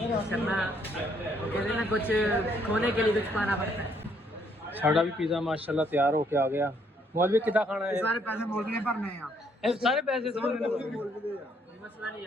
शर्मा कहते ना कुछ खोने के लिए कुछ पाना पड़ता है। साड़ा भी पिज़्ज़ा माशाल्लाह तैयार होके आ गया। मौलवी कितना खाना है? सारे पैसे मौलवी ने भरने हैं सारे पैसे मौलवी ने भरने मसला नहीं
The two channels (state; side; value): normal; both; correlation 0.69